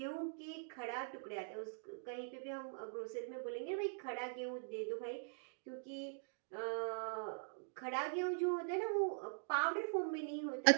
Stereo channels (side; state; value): left; silent; digital silence